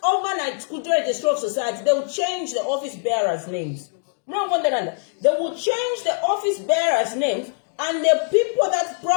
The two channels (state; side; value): silent; right; 64 dB below the other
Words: overnight could register of society, they will change the office bearers' names. No wonder they will change the office bearers' names, and the people that